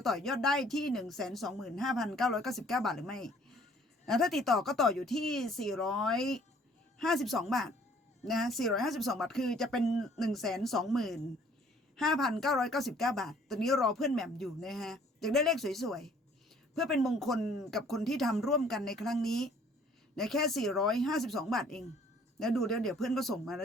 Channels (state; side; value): normal; both; correlation 0.57